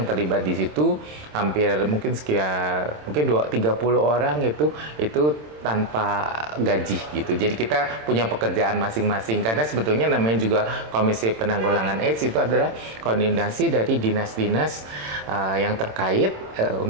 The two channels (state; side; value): late; left; 27 ms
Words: terlibat di situ hampir mungkin 30 orang itu tanpa gaji gitu. Jadi kita punya pekerjaan masing-masing karena sebetulnya namanya juga Komisi Penanggulangan AIDS itu adalah koordinasi dari dinas-dinas yang terkait